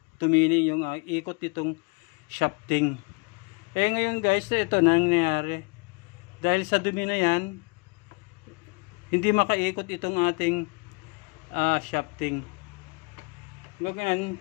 tumini yung ikot nitong shafting. Ngayon guys, ito na nangyayari. Dahil sa dumi na yan, hindi makaikot itong ating shafting. Ngayon,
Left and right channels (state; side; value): quieter; right; 31.2 dB